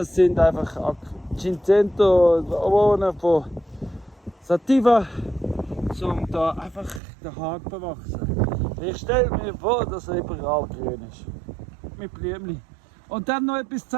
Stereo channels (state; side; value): drops out; left; at 7.0 s